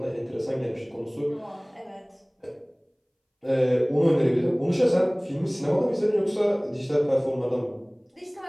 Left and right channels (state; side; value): identical; both; correlation 1.00